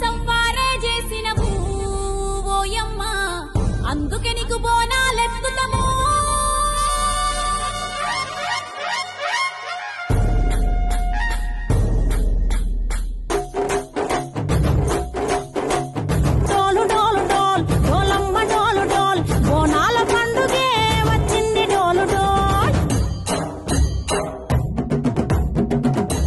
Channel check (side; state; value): both; identical; correlation 1.00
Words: సంవారే చేసినవు ఓయమ్మ, అందుకే నీకు బోనాలెత్తుతము.